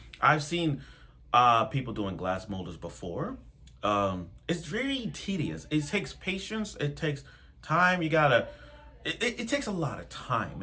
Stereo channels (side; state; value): both; identical; correlation 1.00